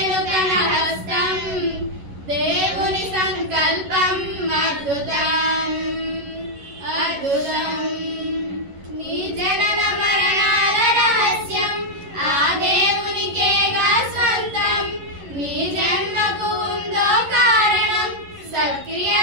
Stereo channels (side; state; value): left; late; 11 ms